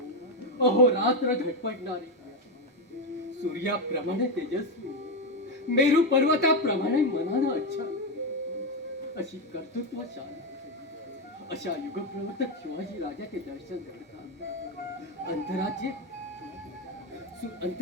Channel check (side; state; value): both; normal; correlation 0.08